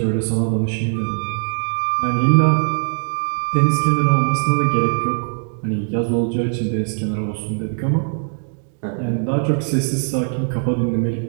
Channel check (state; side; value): silent; left; 66 dB below the other